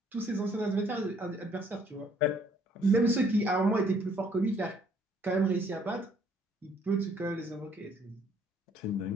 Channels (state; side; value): normal; both; correlation 0.63